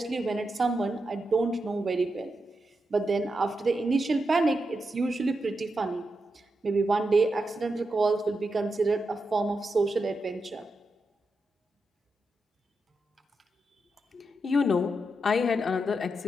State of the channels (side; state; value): both; normal; correlation 0.86